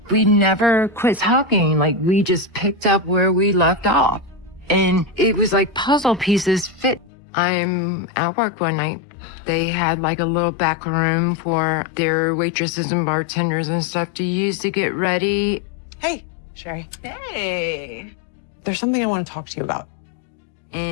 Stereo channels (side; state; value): right; drops out; at 7.1 s